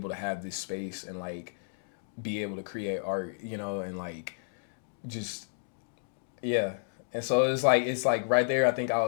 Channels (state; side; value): silent; right; digital silence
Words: to have this space and like be able to create art, you know, and like just yeah. And so it's like right there I think I